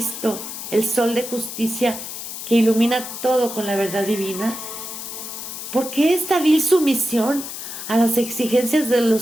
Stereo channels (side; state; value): left; noise; hiss, 8 dB below the sound